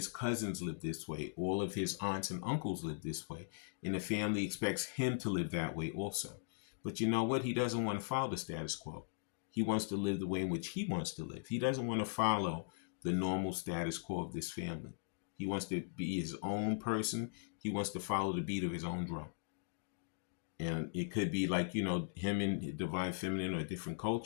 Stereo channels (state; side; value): silent; right; digital silence